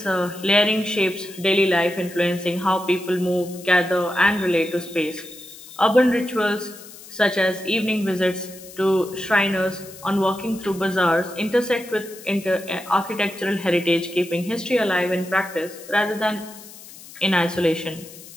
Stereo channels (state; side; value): noise; left; hiss, 18 dB below the sound